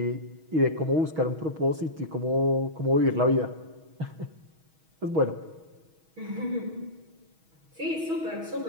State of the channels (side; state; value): left; late; 6.3 ms